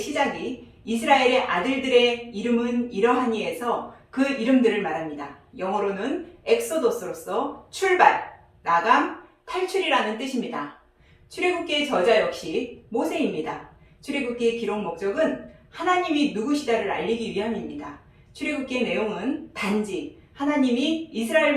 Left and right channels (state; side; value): identical; both; correlation 1.00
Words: 시작이 이스라엘의 아들들의 이름은 이러하니에서 그 이름들을 말합니다. 영어로는 엑소도스로서 출발, 나감, 탈출이라는 뜻입니다. 출애굽기의 저자 역시 모세입니다. 출애굽기의 기록 목적은 하나님이 누구시다를 알리기 위함입니다. 출애굽기의 내용은 단지 하나님이 이스라엘